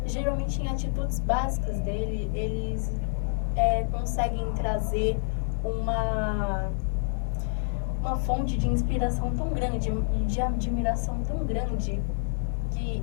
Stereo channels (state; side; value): silent; right; 59 dB below the other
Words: geralmente em atitudes básicas dele, eles conseguem trazer uma fonte de inspiração tão grande, de admiração tão grande, que